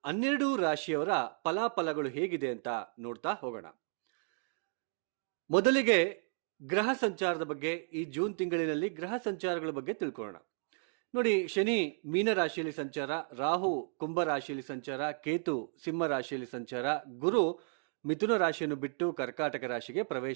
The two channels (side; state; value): left; silent; 55 dB below the other